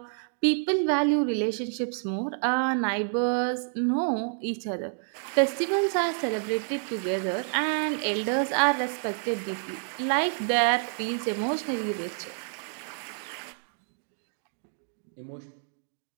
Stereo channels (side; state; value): left; silent; 57 dB below the other